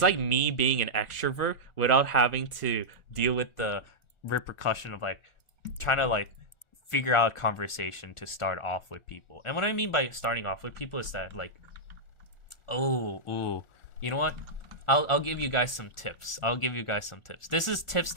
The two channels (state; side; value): late; right; 1.4 ms